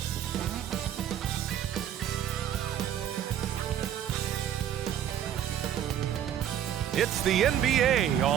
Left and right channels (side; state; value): left; quieter; 10.2 dB